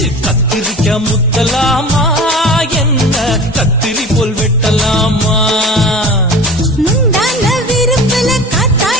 கத்திரிக்க முத்தலாமா என்ன கத்திரி போல் வெட்டலாமா முந்தான விருப்பல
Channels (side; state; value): both; normal; correlation 0.36